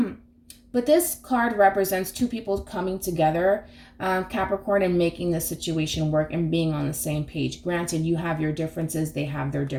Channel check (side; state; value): both; identical; correlation 1.00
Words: But this card represents two people coming together, Capricorn, and making the situation work and being on the same page. Granted, you have your differences, they have their